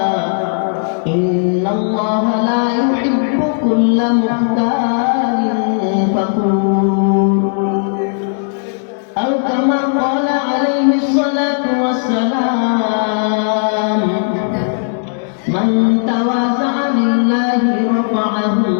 إن الله لا يحب كل مختال فخور أو كما قال عليه الصلاة والسلام من تواضع لله رفعه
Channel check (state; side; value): silent; right; digital silence